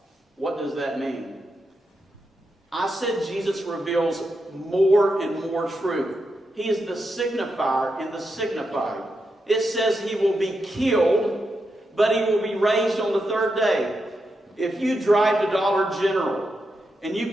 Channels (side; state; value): both; normal; correlation 0.86